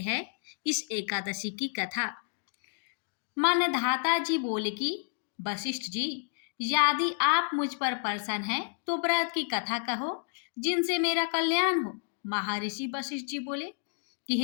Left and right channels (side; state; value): right; silent; 57 dB below the other